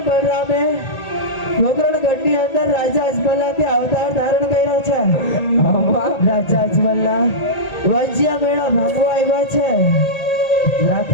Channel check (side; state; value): right; late; 1.8 ms